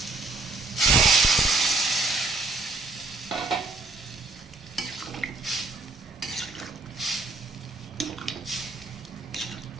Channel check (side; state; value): left; quieter; 3.4 dB